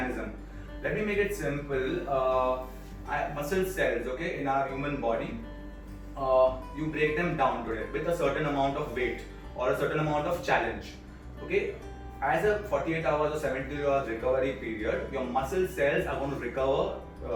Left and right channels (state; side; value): identical; both; correlation 1.00